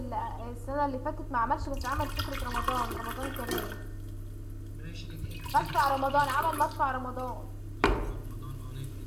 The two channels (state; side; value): identical; both; correlation 1.00